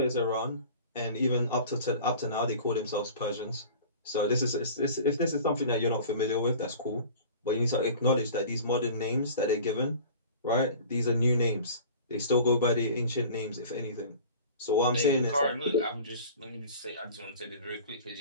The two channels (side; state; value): both; inverted; correlation -0.42